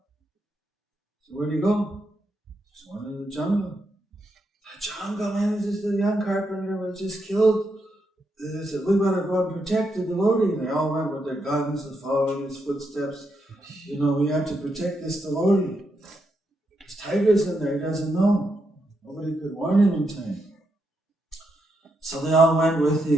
So where'd he go? Just went into the jungle. The jungle, man, this is the young carpenter was just killed. They said, we better go and protect the devotee. And they all went with their guns and following his footsteps. We have to protect this devotee. There's tigers in there, he doesn't know. Nobody could warn him in time. So they all went with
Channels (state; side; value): normal; both; correlation 0.82